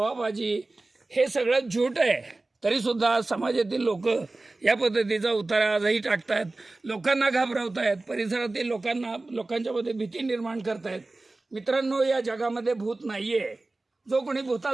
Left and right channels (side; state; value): left; quieter; 3.1 dB